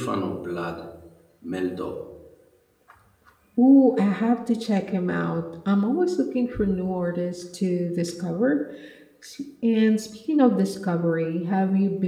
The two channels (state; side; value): identical; both; correlation 1.00